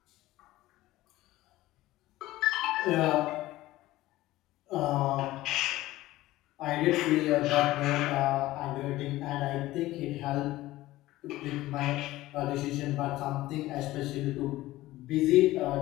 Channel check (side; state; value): right; quieter; 16.9 dB